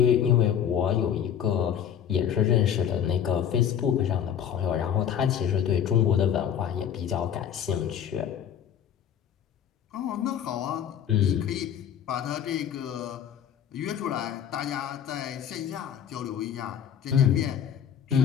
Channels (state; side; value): quieter; right; 9.1 dB